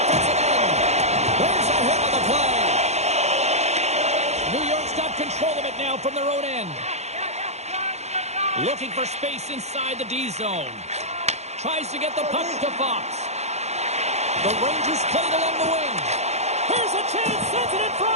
end. There's a hit on the play. New York's got control of it now from their own end. Looking for space inside the D zone. Tries to get the puck to Fox. The Rangers play it along the wing. Here's a chance, sends it in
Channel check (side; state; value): left; late; 0.32 ms